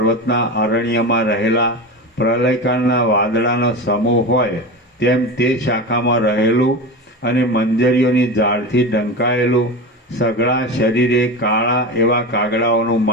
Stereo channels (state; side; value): normal; both; correlation 0.24